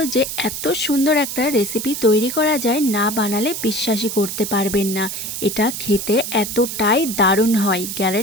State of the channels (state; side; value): noise; right; hiss, 6 dB below the sound